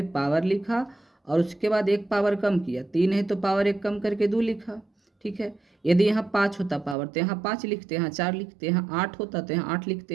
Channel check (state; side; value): drops out; left; at 7.0 s